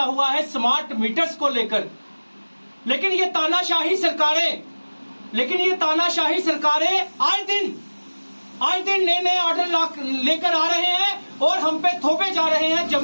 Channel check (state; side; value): inverted; both; correlation -1.00